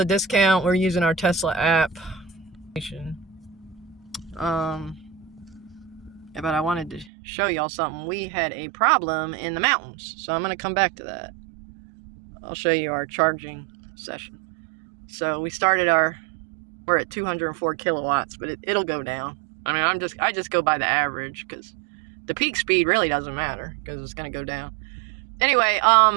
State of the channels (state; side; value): drops out; left; at 7.1 s